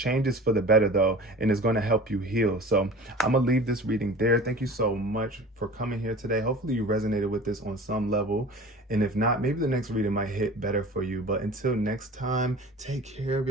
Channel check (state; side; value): normal; both; correlation 0.40